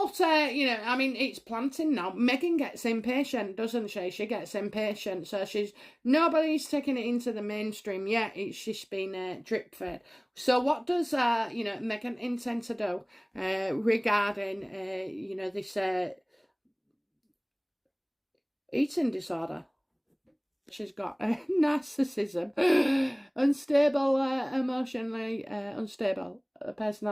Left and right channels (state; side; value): identical; both; correlation 1.00